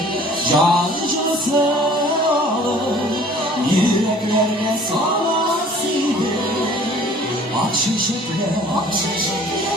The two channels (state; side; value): normal; both; correlation 0.51